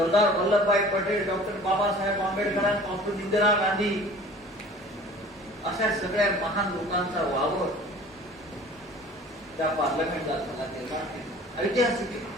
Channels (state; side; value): normal; both; correlation 0.46